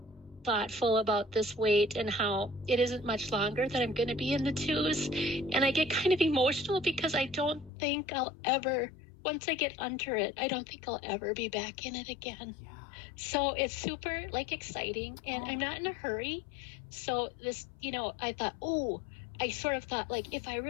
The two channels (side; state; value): right; drops out; at 7.7 s